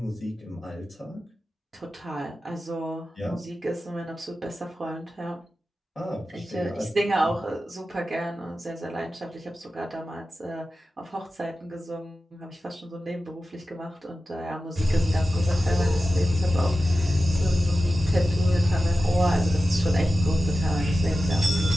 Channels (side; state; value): both; normal; correlation 0.93